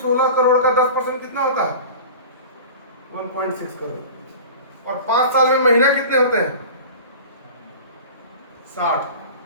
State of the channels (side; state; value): both; inverted; correlation -0.37